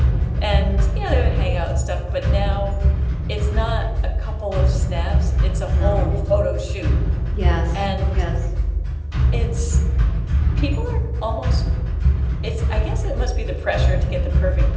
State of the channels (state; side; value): identical; both; correlation 1.00